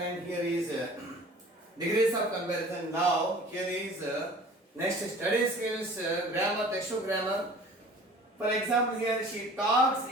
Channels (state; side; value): normal; both; correlation 0.46